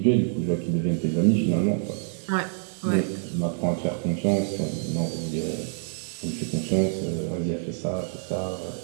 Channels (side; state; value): left; silent; digital silence